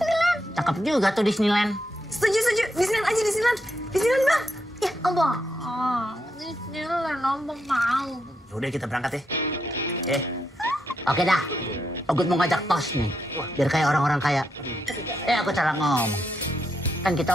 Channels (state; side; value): normal; both; correlation 0.81